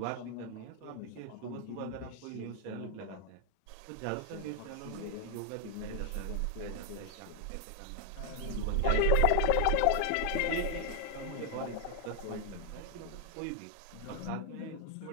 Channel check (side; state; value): both; different; correlation 0.00